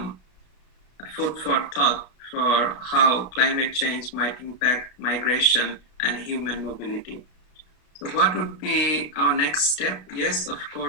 food for thought for how climate change might impact migration and human mobility. So what would be our next step? Yes, of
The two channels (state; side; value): late; right; 33 ms